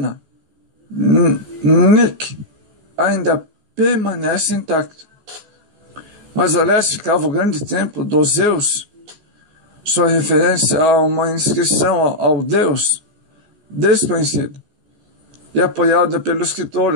Nik, ainda permanece intacto. Mas a leste ficava o grande templo dos Zeus, sua referência a uma inscrição ao deus desconhecido, e apoiada pelo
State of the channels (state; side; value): late; left; 14 ms